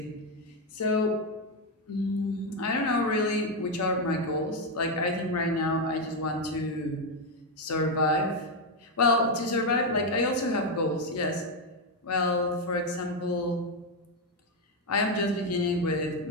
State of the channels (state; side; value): normal; both; correlation 0.05